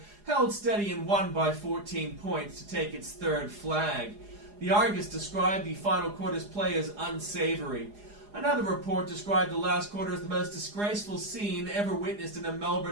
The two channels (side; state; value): left; late; 4.8 ms